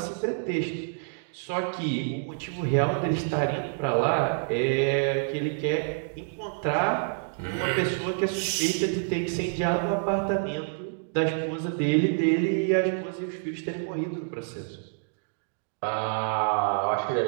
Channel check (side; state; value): left; silent; digital silence